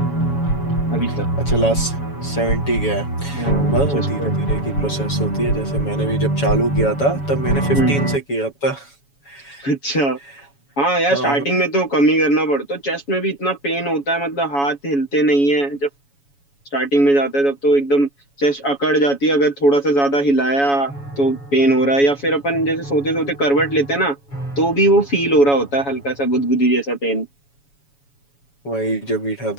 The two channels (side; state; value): right; late; 7.1 ms